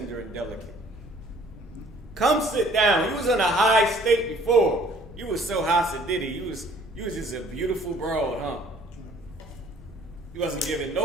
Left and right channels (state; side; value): normal; both; correlation 0.56